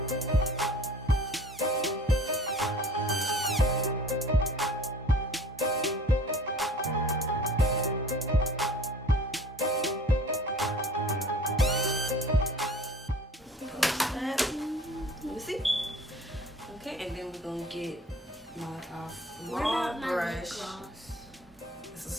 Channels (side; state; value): both; normal; correlation 0.47